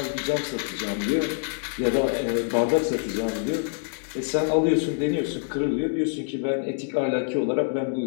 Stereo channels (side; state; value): right; silent; digital silence